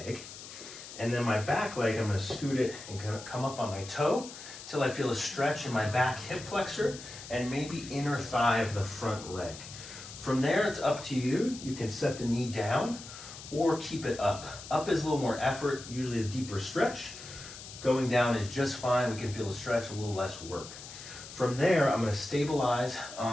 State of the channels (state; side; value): noise; left; hiss, 13 dB below the sound